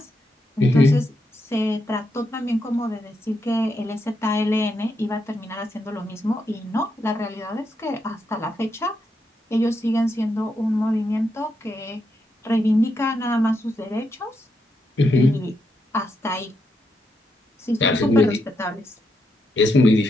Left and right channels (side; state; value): both; normal; correlation 0.82